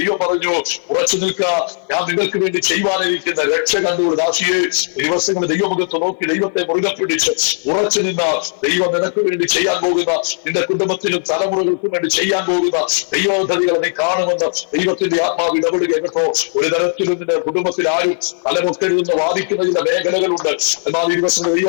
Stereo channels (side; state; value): right; silent; 56 dB below the other